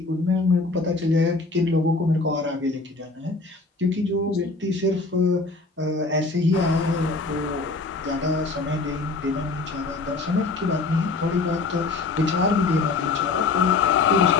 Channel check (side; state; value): right; quieter; 3.8 dB